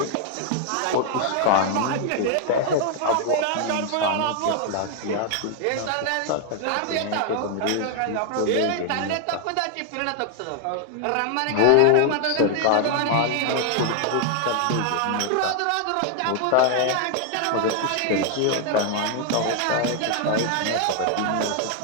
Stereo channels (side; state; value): both; different; correlation 0.00